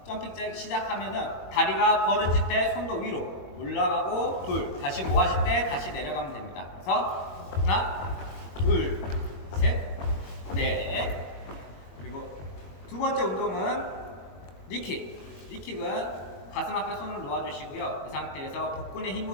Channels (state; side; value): late; right; 21 ms